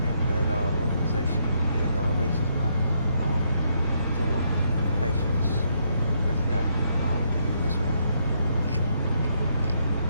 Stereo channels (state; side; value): inverted; both; correlation -0.75